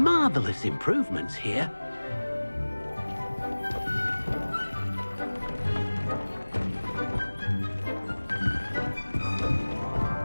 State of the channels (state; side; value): inverted; both; correlation -1.00